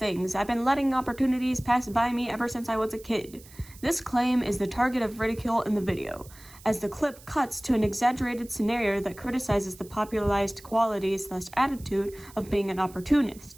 I've been letting opportunities pass by me ever since I was a kid." This claim is the target of ridicule in the video, as the clip cuts to an exaggerated scenario that criticizes the popularized quality/attitude of being an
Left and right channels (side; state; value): right; noise; hiss, 22 dB below the sound